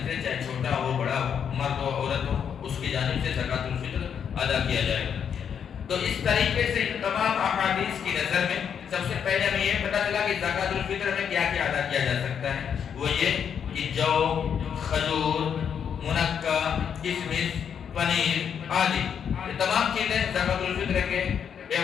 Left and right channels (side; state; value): right; quieter; 7.8 dB